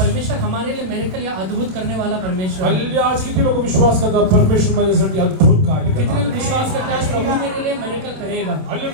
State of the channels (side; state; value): left; late; 27 ms